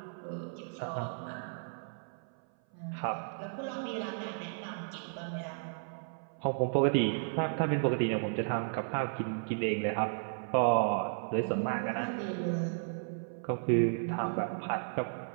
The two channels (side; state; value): left; silent; 55 dB below the other